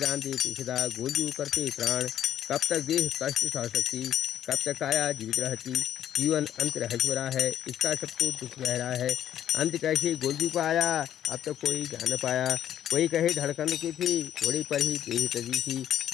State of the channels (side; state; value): right; quieter; 10.8 dB